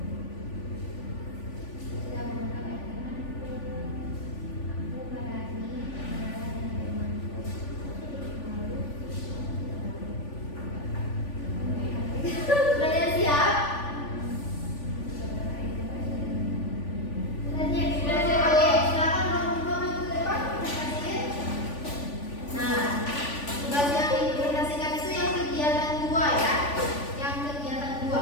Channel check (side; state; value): right; late; 3.5 ms